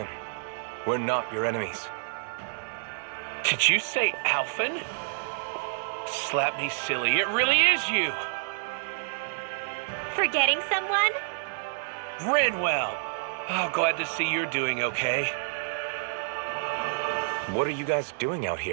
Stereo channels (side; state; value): left; silent; 59 dB below the other